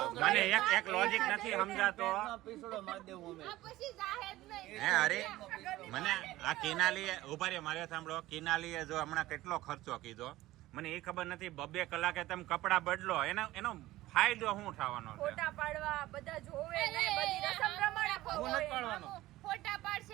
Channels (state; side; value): quieter; left; 16.7 dB